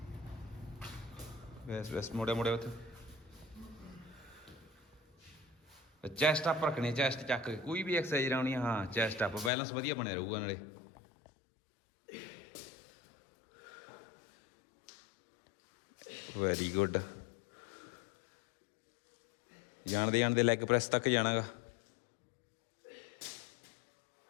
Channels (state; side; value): drops out; right; at 9.5 s